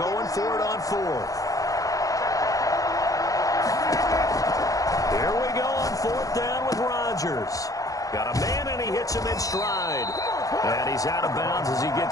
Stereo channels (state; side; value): late; right; 0.17 ms